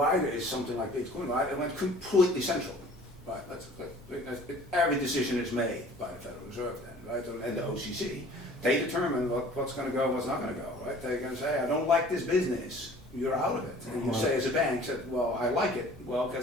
there is something like Bitcoin, right? It went completely central. Right, every decision is made by the Federal Reserve then, right, and the OCC. They determine what's going to go and what's not going to go, right? They're going to say, I don't like this business, you're out of it. And you say as a bank, well, I like it. Well,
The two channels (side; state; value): both; normal; correlation 0.49